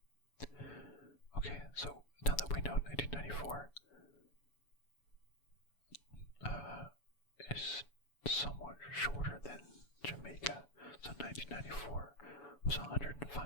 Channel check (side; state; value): right; late; 7.0 ms